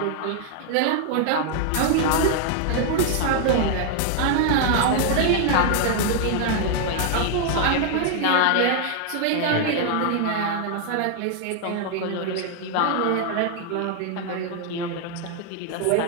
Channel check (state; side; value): different; both; correlation 0.00